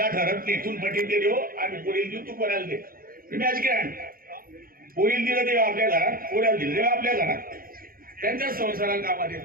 ठरत नाही. इथून पटील दिले हो आम्ही पोरील देऊ तू पोऱ्याला दे. मॅच ग्रँड पोरील दिलं तेव्हा आपल्या घरात, पोऱ्याला दिलं तेव्हा आपल्या घरात. त्यांच्याच संसाराला कामात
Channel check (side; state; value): left; late; 0.42 ms